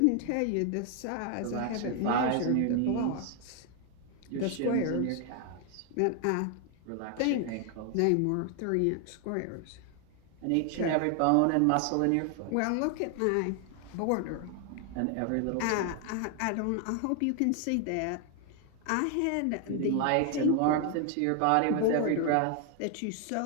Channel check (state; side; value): different; both; correlation 0.00